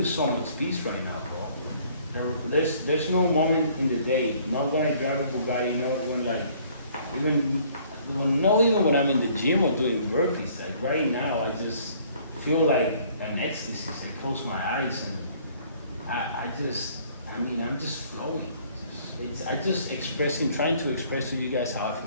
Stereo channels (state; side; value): inverted; both; correlation -0.58